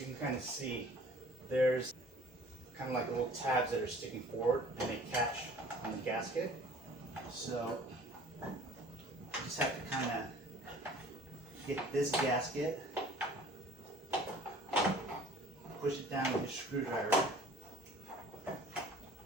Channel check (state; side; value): normal; both; correlation 0.49